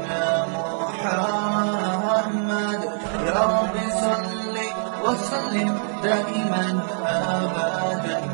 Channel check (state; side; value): silent; left; digital silence